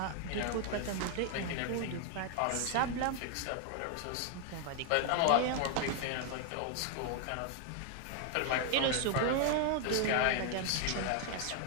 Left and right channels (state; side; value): different; both; correlation 0.00